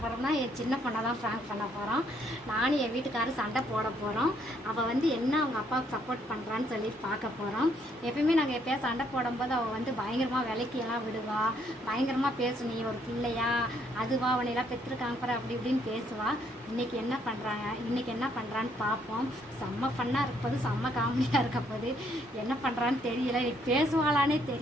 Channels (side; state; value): both; normal; correlation 0.69